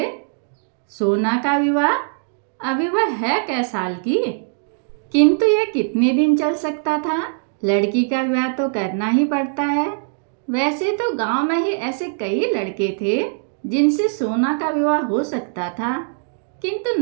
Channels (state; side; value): silent; left; digital silence